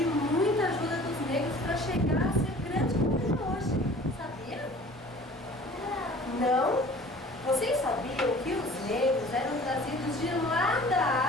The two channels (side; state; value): both; normal; correlation 0.47